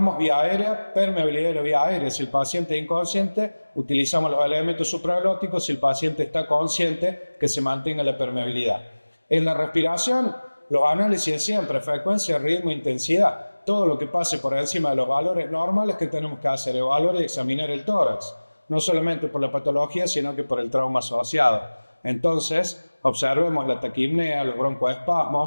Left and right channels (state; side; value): inverted; both; correlation -1.00